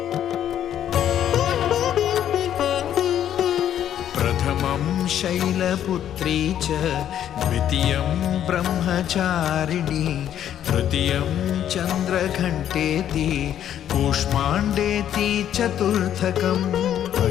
प्रथमं शैलपुत्री च द्वितीयं ब्रह्मचारिणी तृतीयं चन्द्रघण्टेति कूष्माण्डेति चतुर्थकं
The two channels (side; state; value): right; quieter; 10.5 dB